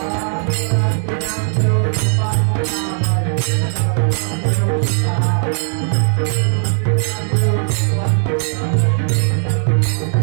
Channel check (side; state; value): left; silent; digital silence